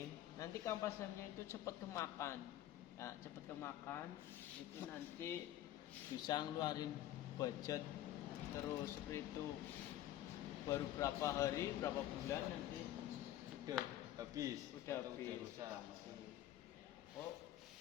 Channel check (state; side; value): quieter; right; 13.3 dB